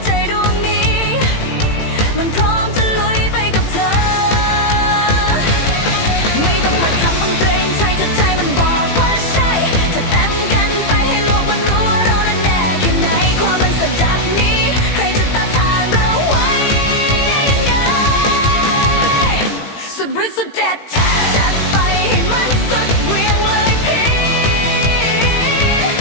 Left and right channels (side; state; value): right; late; 18 ms